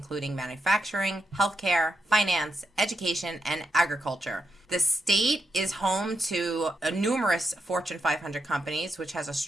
manufacturing, healthcare, finance, education, and agriculture. The state is home to numerous Fortune 500 companies, which has a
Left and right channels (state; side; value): normal; both; correlation 0.84